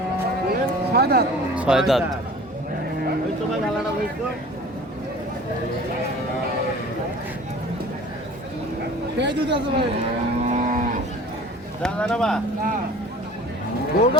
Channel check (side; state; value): both; normal; correlation 0.44